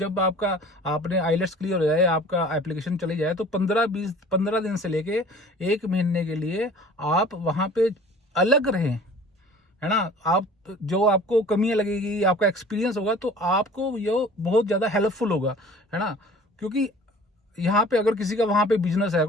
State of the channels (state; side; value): normal; both; correlation 0.46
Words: आपने आइलेट्स क्लियर हो जाए, आपका एप्लीकेशन चली जाए, तो 15 दिन से लेके 1 महीने के लिए आप वहाँ पे अलग रहें, है ना। आप जो आपको कमियां लगेगी, आपका एक्सपीरियंस होगा, तो आपको ये बहुत ज़्यादा हेल्पफुल होगा, है ना। क्योंकि यहाँ पे अगर किसी का वहाँ पे बिजनेस है,